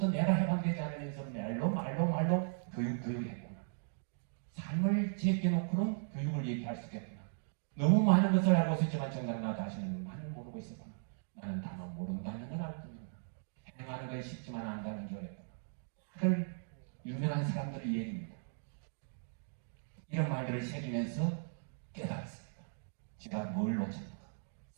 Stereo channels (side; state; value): left; silent; digital silence